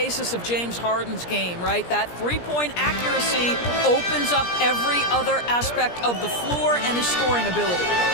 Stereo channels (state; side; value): late; right; 17 ms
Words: of James Harden's game, right? That three-point accuracy opens up every other aspect of the floor and his scoring ability.